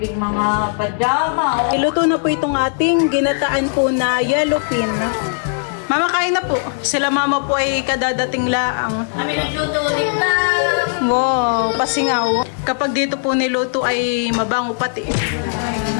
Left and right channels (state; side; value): silent; right; 67 dB below the other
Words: mga pajama. Oh. Iluto na po itong ating ginataan po na yellowfin. Mama, kain na po. Sila mama po ay kadadating laang. Kami nagluto ulit na. Wow, pasingaw. Kapag dito po niluto ay mabango pati.